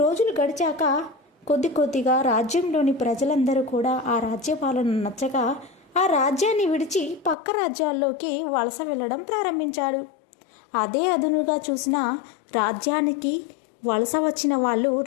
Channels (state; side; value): drops out; right; at 7.4 s